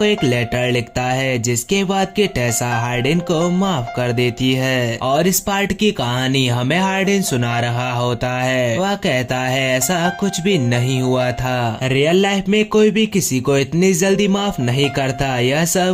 एक लेटर लिखता है जिसके बाद कि टेसा हार्डिन को माफ कर देती है। और इस पार्ट की कहानी हमें हार्डिन सुना रहा होता है। वह कहता है ऐसा कुछ भी नहीं हुआ था, रियल लाइफ में कोई भी किसी को इतनी जल्दी माफ नहीं करता, यह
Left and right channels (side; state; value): both; identical; correlation 1.00